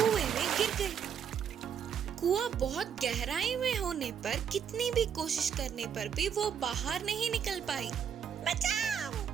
में गिर गई। कुआं बहुत गहराई में होने पर कितनी भी कोशिश करने पर भी वो बाहर नहीं निकल पाई। बचाओ,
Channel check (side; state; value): left; quieter; 8.0 dB